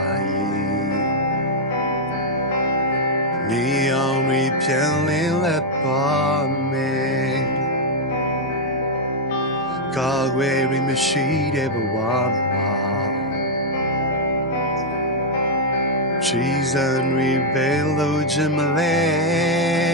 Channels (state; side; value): normal; both; correlation -0.01